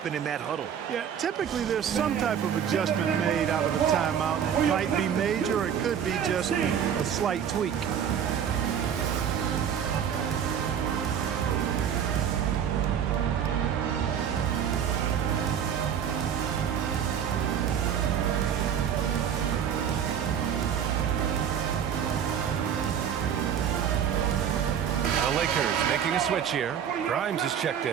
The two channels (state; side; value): quieter; left; 8.5 dB